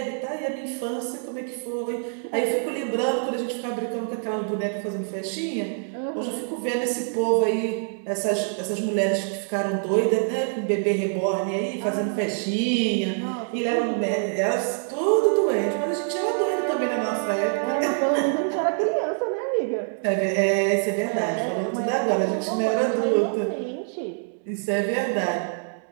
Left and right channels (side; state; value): left; silent; 62 dB below the other